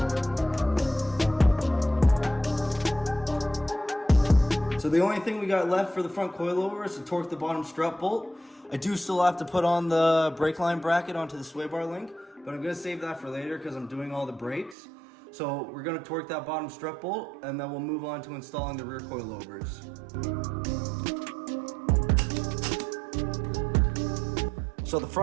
So the only thing we got left for the front coilover is to torque the bottom strut bolt. I do still have to put on the brake line bracket onto the sway bar link, but I'm gonna save that for later because I'm doing all the brakes. So we're gonna torque that bottom strut bolt, and then we'll move on to installing the rear coilovers. So the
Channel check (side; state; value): left; drops out; at 14.8 s